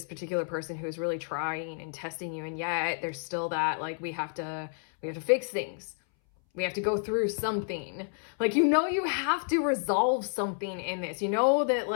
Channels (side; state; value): right; silent; 58 dB below the other